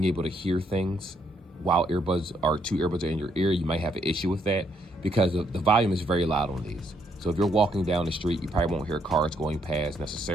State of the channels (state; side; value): normal; both; correlation 0.72